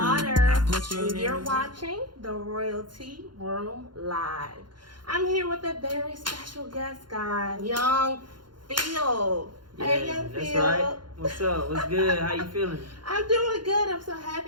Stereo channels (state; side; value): late; left; 0.71 ms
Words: And you're watching the Royalty Room Live. I'm here with a very special guest, guy, Young Field. Yeah, hey, Young that's Field. right. What's up? What's good? How you feeling? I'm doing good. I'm so